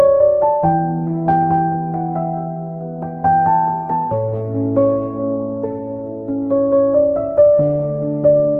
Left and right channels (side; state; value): both; identical; correlation 1.00